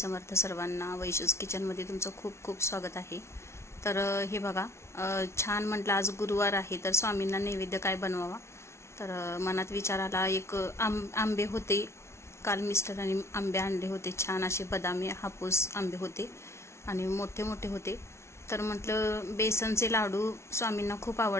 सर्वांना वैशूज किचनमध्ये तुमचं खूप खूप स्वागत आहे। तर हे बघा, छान म्हटलं आज गुरुवार आहे तर स्वामींना नैवेद्य काय बनवावा, तर मनात विचार आला। एक आंबे होते, काल मिस्टरांनी आंबे आणले होते, छान असे बदामी हापूस आंबे होते आणि मोठे मोठे होते। तर म्हटलं बेसनचे लाडू स्वामींना खूप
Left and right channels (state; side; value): late; right; 0.13 ms